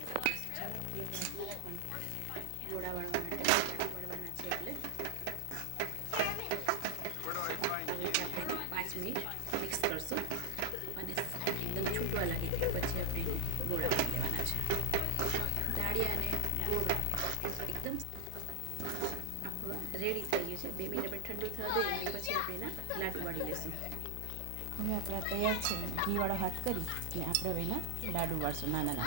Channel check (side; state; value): both; different; correlation 0.00